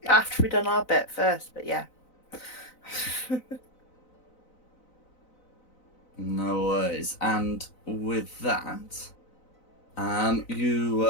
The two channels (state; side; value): late; right; 4.0 ms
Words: After we've done our bit first, but yeah. No worries. And with that,